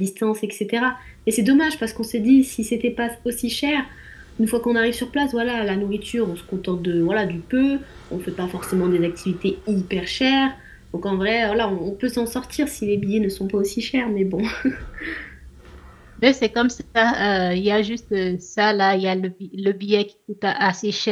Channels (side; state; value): both; identical; correlation 1.00